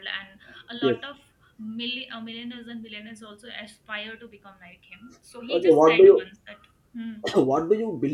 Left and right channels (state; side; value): identical; both; correlation 1.00